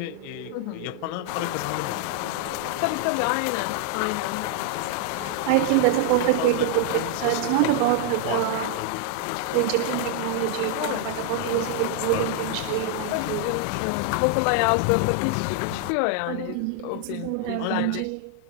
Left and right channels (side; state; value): both; different; correlation 0.00